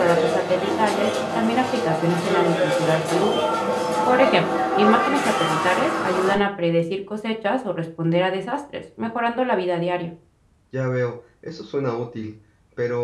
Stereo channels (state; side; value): identical; both; correlation 1.00